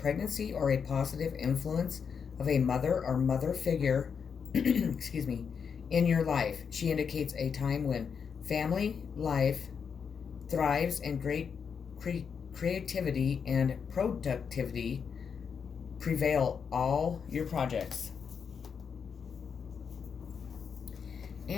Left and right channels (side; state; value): right; quieter; 6.5 dB